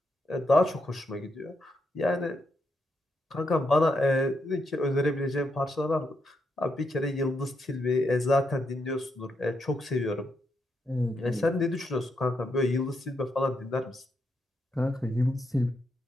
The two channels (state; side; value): normal; both; correlation 0.81